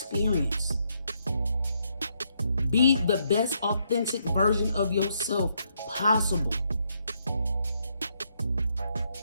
Be the best authentic version of yourself possible.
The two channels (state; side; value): inverted; both; correlation -0.76